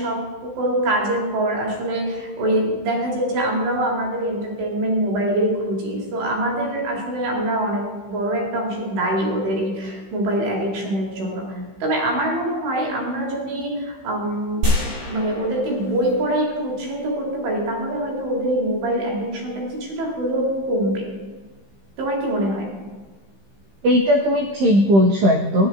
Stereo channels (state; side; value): late; left; 15 ms